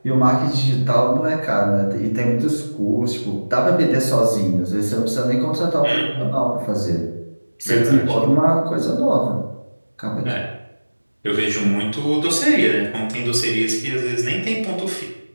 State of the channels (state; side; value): inverted; both; correlation -1.00